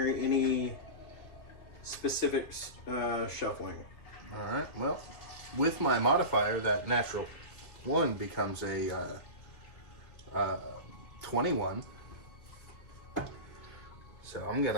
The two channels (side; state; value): right; late; 2.8 ms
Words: any specific shuffling. All right. Well, with my modifier, that natural 1 becomes a 21. So